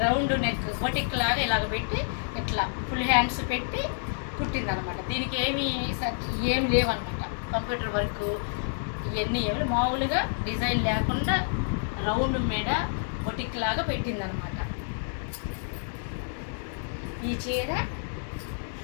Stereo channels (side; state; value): right; silent; digital silence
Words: రౌండ్ నెక్ బొటిక్ లాగా ఇలాగ పెట్టి ఇట్లా ఫుల్ హ్యాండ్స్ పెట్టి కుట్టిందనమాట. దీనికి ఏమి లేవన్నమాట. కంప్యూటర్ వర్క్ ఇవన్నీ ఏమి మామూలుగా డిజైన్ లేకుండా రౌండ్ మీద బొటిక్ లాగా పెట్టిందనమాట. ఈ చీర